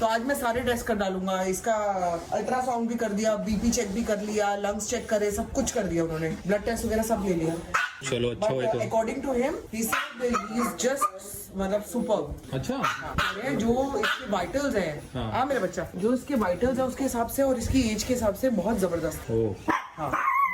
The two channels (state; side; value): identical; both; correlation 1.00